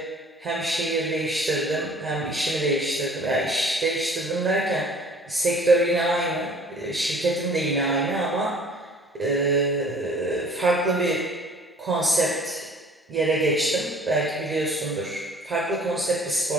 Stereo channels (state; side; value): normal; both; correlation 0.51